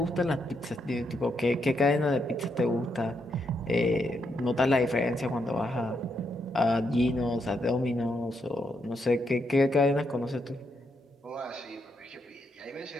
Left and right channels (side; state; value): both; normal; correlation 0.79